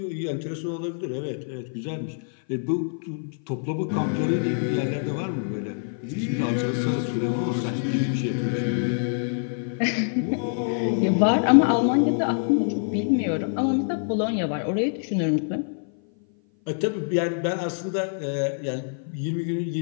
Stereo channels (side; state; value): right; silent; 56 dB below the other